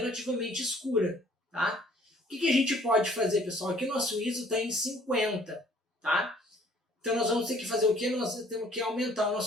escura, tá? O que a gente pode fazer, pessoal? Aqui o nosso ISO está em 50, tá? Então nós vamos ter que fazer o quê? Nós temos que aumentar o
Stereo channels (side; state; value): both; normal; correlation 0.58